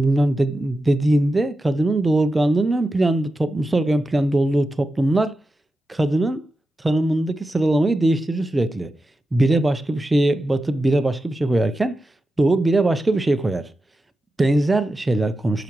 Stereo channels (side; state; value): both; normal; correlation 0.91